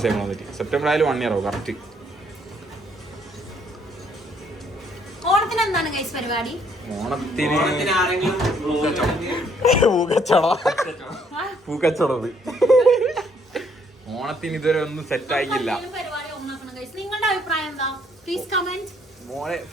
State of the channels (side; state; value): both; normal; correlation 0.67